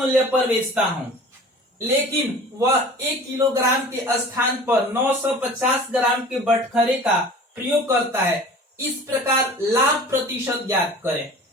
पर बेचता हूं, लेकिन वह 1 किलोग्राम के स्थान पर 950 ग्राम के बटखरे का प्रयोग करता है। इस प्रकार लाभ प्रतिशत ज्ञात करें।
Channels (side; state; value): both; normal; correlation 0.43